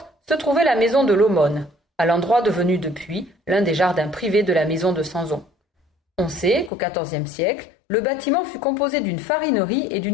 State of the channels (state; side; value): drops out; right; at 6.7 s